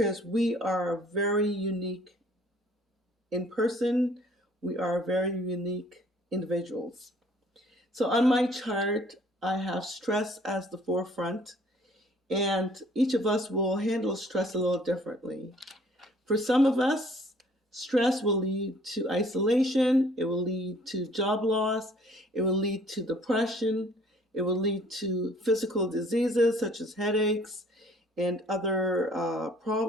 we are very unique in person. We are very unique individuals. So on my chart, I have stress as the forefront, and each of us will handle stress a little differently. For some of us, stress will lead to isolation, it will lead to job loss, it will lead to depression, it will lead to physical diseases such as headaches and other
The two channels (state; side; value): normal; both; correlation 0.57